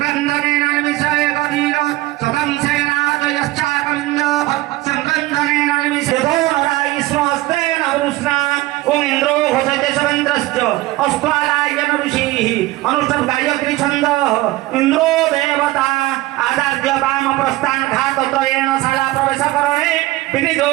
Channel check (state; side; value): quieter; left; 18.4 dB